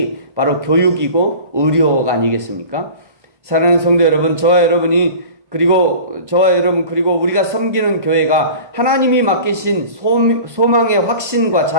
바로 교육이고 의료가 아니겠습니까? 사랑하는 성도 여러분, 저와 여러분 그리고 우리가 섬기는 교회가 하나님이 맡기신 소망의 확신과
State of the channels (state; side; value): late; left; 1.1 ms